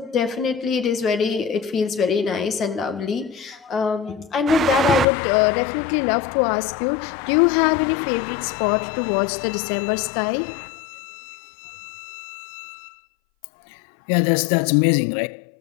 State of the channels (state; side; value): drops out; right; at 5.1 s